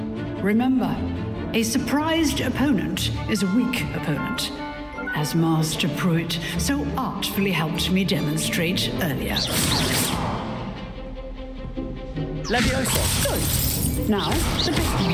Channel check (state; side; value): identical; both; correlation 1.00